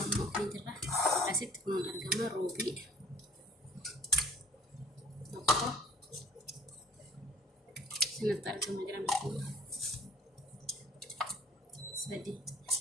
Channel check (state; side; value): normal; both; correlation 0.53